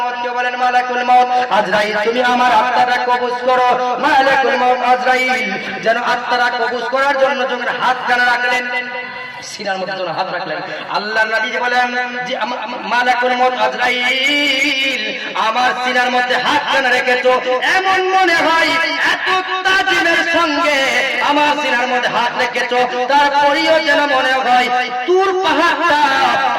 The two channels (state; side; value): identical; both; correlation 1.00